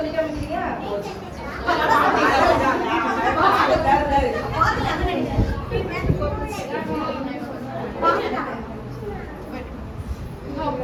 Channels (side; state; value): both; identical; correlation 1.00